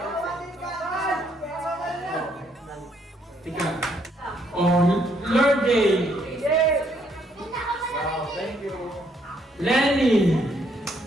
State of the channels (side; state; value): both; normal; correlation 0.70